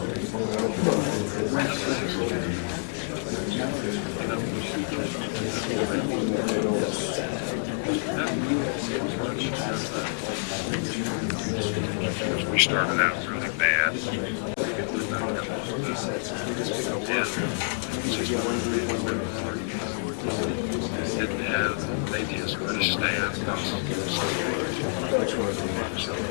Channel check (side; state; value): right; silent; digital silence